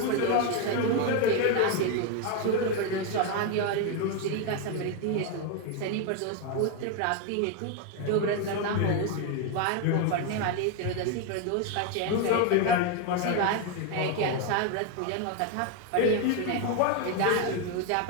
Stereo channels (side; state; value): both; different; correlation 0.01